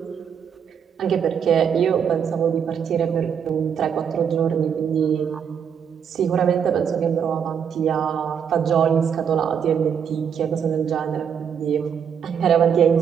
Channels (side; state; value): left; quieter; 7.6 dB